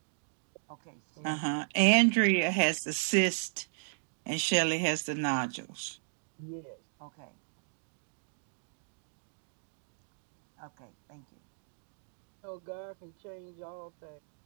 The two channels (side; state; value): left; silent; digital silence